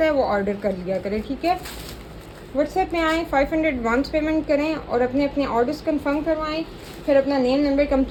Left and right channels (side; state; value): both; identical; correlation 1.00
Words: है, वो ऑर्डर कर लिया करे, ठीक है। व्हाट्सएप में आएँ, 500 एडवांस पेमेंट करें और अपने अपने ऑर्डर्स कंफर्म करवाएं, फिर अपना नेम, नंबर,